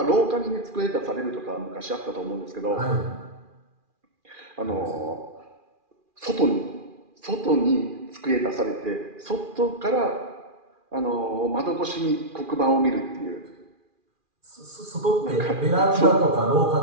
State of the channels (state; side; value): late; left; 2.4 ms